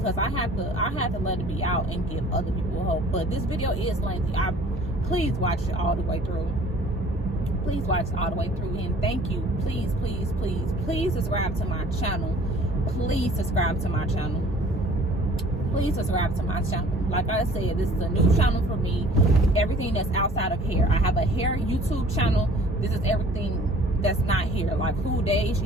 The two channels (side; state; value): both; normal; correlation 0.51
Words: I had to let it be out and give other people hope. But this video is lengthy. Please watch it all the way through. Please watch it all the way through, and thank you. Please subscribe to my channel. Please subscribe to my channel. Please subscribe to my channel. Like I said, this is a new channel for me. Everything that's outside of hair. I have a hair YouTube channel. This is everything that's not here, like who Deja